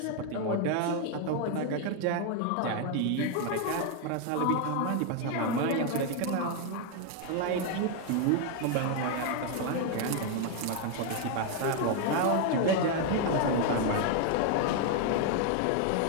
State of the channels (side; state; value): both; different; correlation 0.01